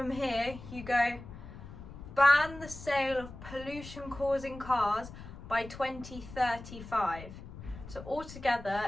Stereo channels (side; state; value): left; noise; rumble, 14 dB below the sound